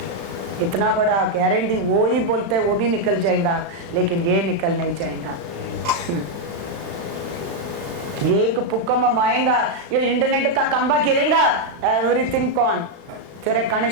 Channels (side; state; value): left; late; 36 ms